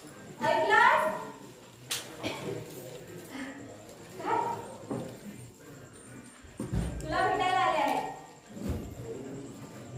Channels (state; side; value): identical; both; correlation 1.00